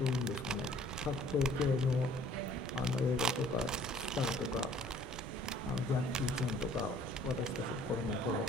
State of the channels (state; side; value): normal; both; correlation 0.56